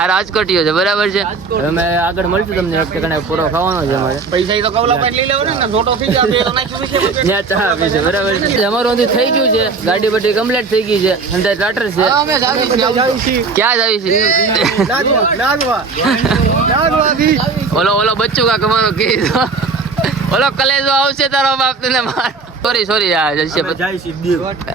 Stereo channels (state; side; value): quieter; left; 4.4 dB